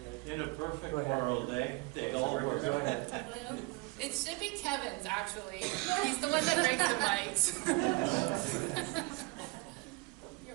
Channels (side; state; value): left; quieter; 26.6 dB